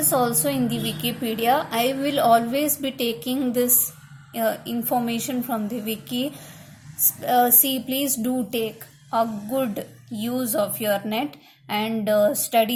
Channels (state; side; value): identical; both; correlation 1.00